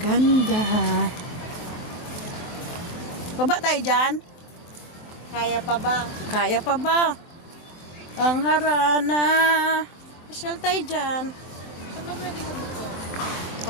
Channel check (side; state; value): right; late; 22 ms